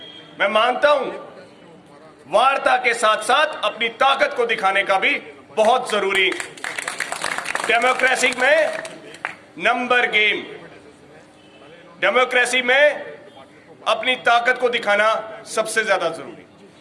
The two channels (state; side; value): identical; both; correlation 1.00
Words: मैं मानता हूं वार्ता के साथ साथ अपनी ताकत को दिखाने का भी बहुत जरूरी। डेमोक्रेसी में नंबर गेम, डेमोक्रेसी में अपनी ताकत को दिखाना सबसे ज्यादा जरूरी।